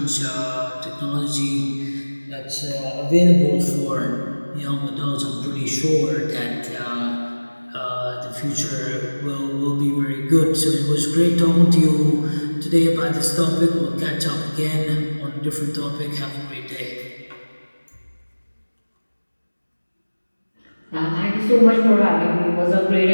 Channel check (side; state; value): both; inverted; correlation -1.00